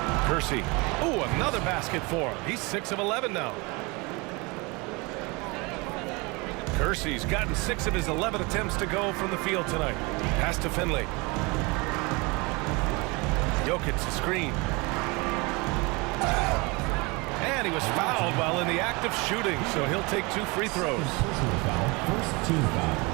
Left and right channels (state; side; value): quieter; left; 26.7 dB